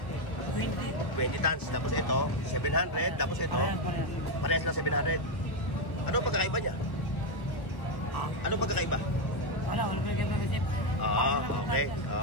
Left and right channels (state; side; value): late; right; 1.2 ms